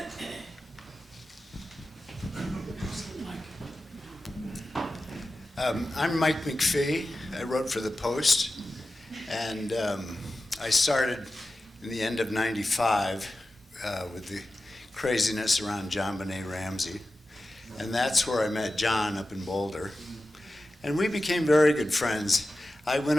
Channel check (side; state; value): both; normal; correlation 0.93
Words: I'm Mike McPhee. I wrote for the Post, and I started in the end of '95 with the craziness around John Benet Ramsey, and that's where I met John up in Boulder, and we became very good friends. I went